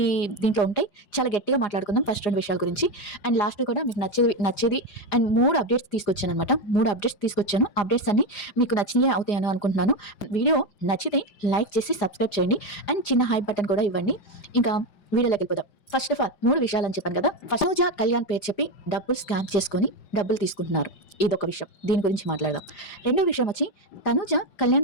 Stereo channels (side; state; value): right; late; 4.9 ms